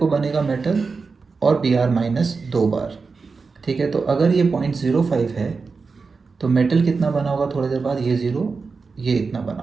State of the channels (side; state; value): left; quieter; 4.6 dB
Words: बनेगा मेटल और Br माइनस 2 बार, ठीक है। तो अगर ये 0.05 है तो मेटल कितना बना होगा थोड़ी देर बाद, ये ज़ीरो, ये इतना बना